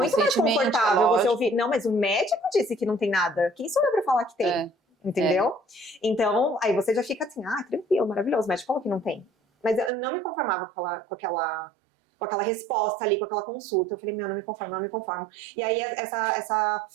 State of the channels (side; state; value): left; drops out; at 9.9 s